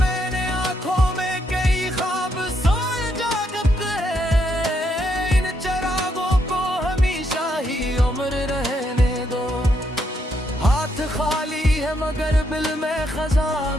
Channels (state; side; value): normal; both; correlation 0.76